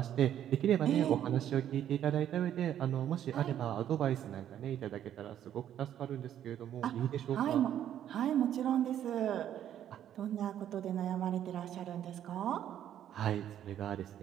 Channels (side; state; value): left; quieter; 10.7 dB